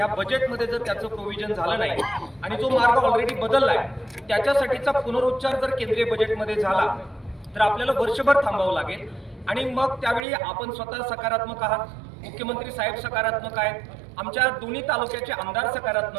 बजेटमध्ये जर त्याचं प्रोव्हिजन झालं नाही आणि जो मार्ग ऑलरेडी बदलला आहे त्याच्यासाठीचा पुनरुच्चार जर केंद्रीय बजेटमध्ये झाला तर आपल्याला वर्षभर थांबावं लागेल. आणि मग त्यावेळी आपण स्वतः सकारात्मक आहात, मुख्यमंत्री साहेब सकारात्मक आहेत, आमच्या दोन्ही तालुक्याचे आमदार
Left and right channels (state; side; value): drops out; left; at 10.2 s